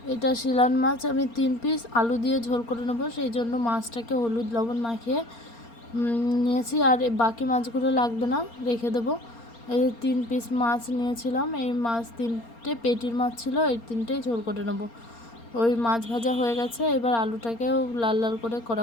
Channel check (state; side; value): late; right; 4.3 ms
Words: এটা শিলান মাছ। আমি 3 পিস আলু দিয়ে ঝোল করে নেবো, সেই জন্য মাছটাকে হলুদ লবণ মাখিয়ে নিয়েছি। আর বাকি মাছগুলো লাগবে না, রেখে দেবো। এই যে 3 পিস মাছ নিয়েছিলাম, এই মাছ 3টে পেটির মাছ ছিল, এই 3টেই ঝোল করে নেবো। ওই মাছ ভাজা হয়ে গেছে, এবার আলুটাকেও লাল লাল করে